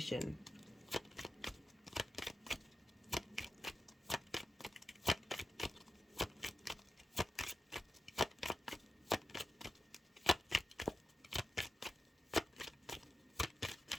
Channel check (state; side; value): normal; both; correlation 0.91